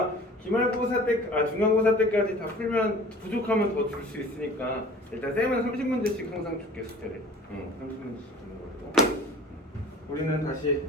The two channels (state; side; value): normal; both; correlation 0.45